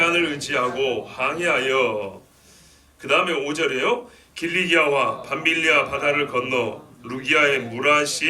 의지하고 항해하여, 그 다음에 5절이에요. 길리기아와 밤빌리아 바다를 건너 루기아의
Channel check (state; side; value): identical; both; correlation 1.00